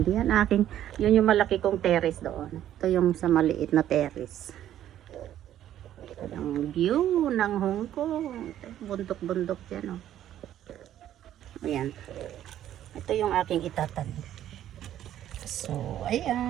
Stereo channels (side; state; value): left; quieter; 11.7 dB